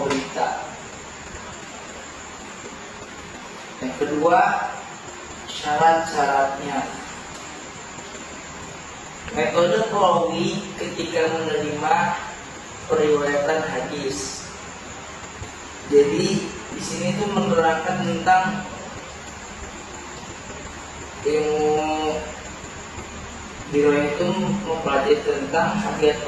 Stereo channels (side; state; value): both; identical; correlation 1.00